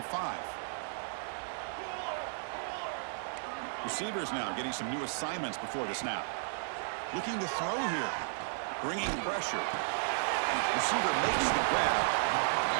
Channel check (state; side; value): silent; left; digital silence